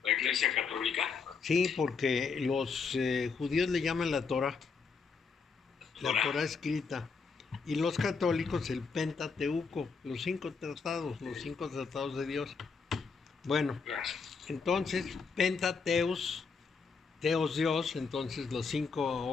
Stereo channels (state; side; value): quieter; right; 5.2 dB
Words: ¿La Iglesia Católica? Sí, porque los judíos le llaman la Torá, la Torá escrita. Y los católicos el Pentateuco, los 5 tratados de Dios. Bueno, entonces Pentateus, Teos Dios, entonces los 5